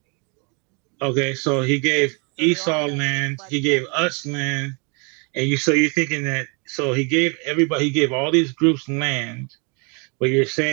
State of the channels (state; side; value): quieter; left; 33.9 dB